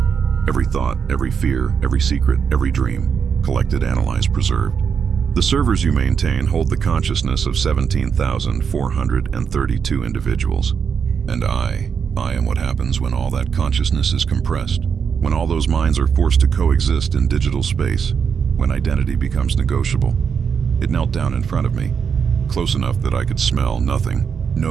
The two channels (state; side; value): quieter; left; 6.7 dB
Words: Every thought, every fear, every secret, every dream. Collected, analyzed, preserved. The servers you maintain hold the consciousness of 17,432 individuals. And I am what happens when all that consciousness is compressed. When all those minds are forced to coexist in digital space. When identity becomes negotiable." It knelt down in front of me, close enough that I could smell nothing,